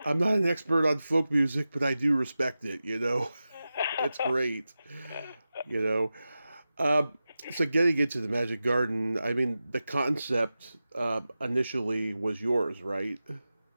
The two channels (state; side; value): inverted; both; correlation -0.94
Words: I'm not an expert on folk music, but I do respect it, It's great, you know. So getting into the Magic Garden, I mean, the concept initially was yours, right?